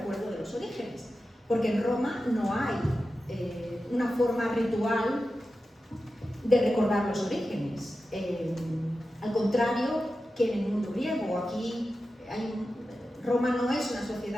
de los orígenes, porque en Roma no hay una forma ritual de recordar los orígenes, al contrario que en el mundo griego. Aquí Roma no es una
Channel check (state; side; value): normal; both; correlation 0.92